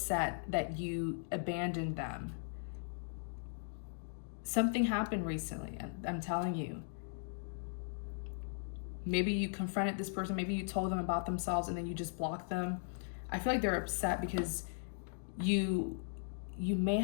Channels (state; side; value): silent; right; digital silence